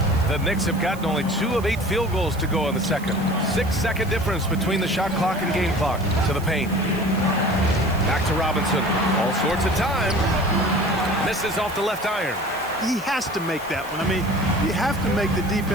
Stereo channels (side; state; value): right; noise; hiss, 19 dB below the sound